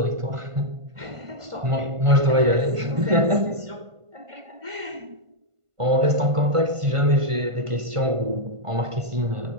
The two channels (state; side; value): late; left; 1.5 ms